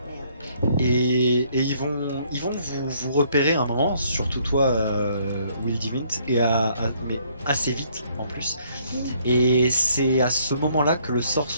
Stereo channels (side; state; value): both; inverted; correlation -0.66